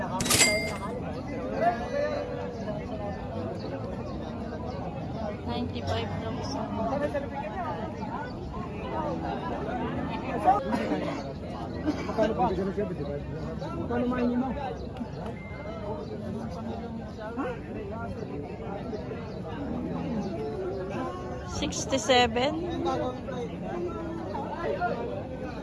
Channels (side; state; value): both; identical; correlation 1.00